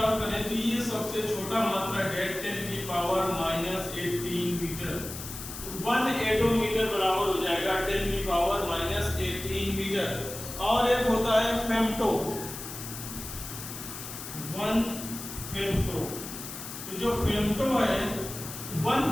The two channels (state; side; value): noise; left; hiss, 9 dB below the sound